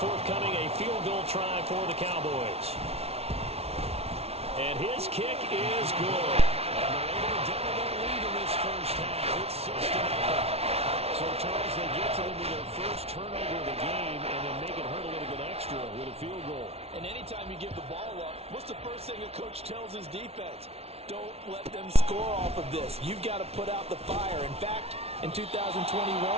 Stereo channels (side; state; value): left; late; 0.30 ms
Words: forthcoming, a field goal try for the Cowboys. And his kick is good. And they're able to double their lead in this first half. It's 6-0. So, Charles, they get to them with their first turnover of the game and then make it hurt a little bit extra with a field goal. And anytime you give the ball up, what's the first thing a coach tells his defense? Don't let them score off of this. You've got to put out the fire. In fact, in 2021,